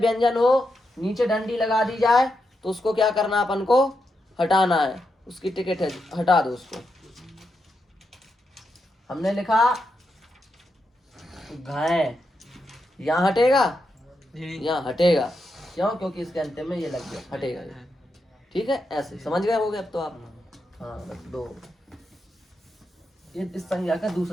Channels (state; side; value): normal; both; correlation 0.85